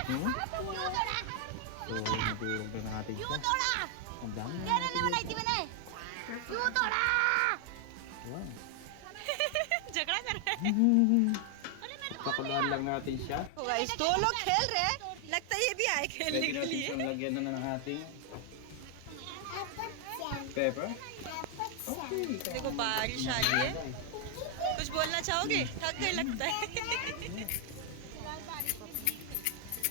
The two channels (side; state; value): both; different; correlation 0.00